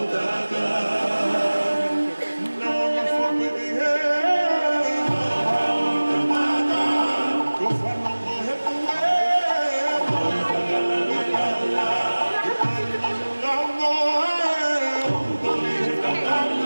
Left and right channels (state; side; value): inverted; both; correlation -1.00